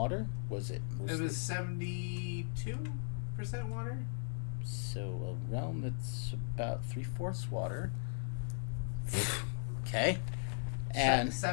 Was it mostly? It was 72% water. So a realm that's about 3/4 water. Okay. And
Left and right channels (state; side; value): silent; right; digital silence